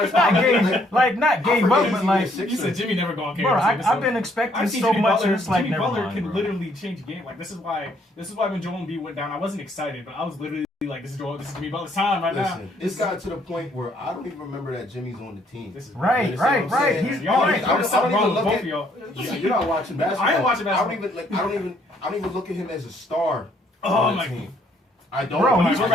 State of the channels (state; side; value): normal; both; correlation 0.67